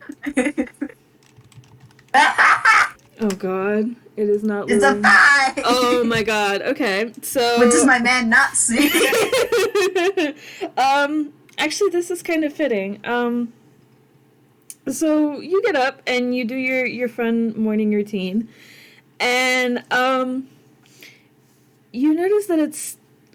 Oh god, it is not It's a loading. 5! Oh my god. Okay, so What does my man not see? actually, this is kind of fitting. So you get up and you do your fun morning routine, and you notice that it's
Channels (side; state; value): both; identical; correlation 1.00